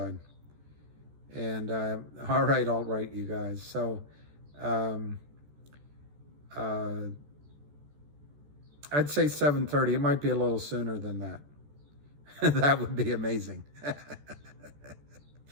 And all right, you guys. So I'd say 7:30. It might be a little sooner than that. That would be amazing.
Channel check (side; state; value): left; late; 14 ms